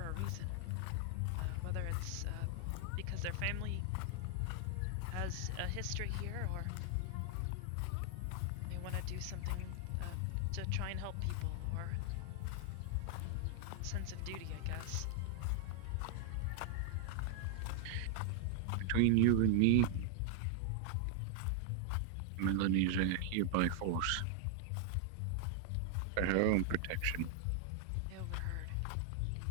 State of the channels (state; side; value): different; both; correlation 0.00